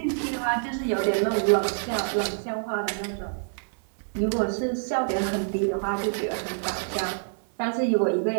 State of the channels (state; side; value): silent; left; digital silence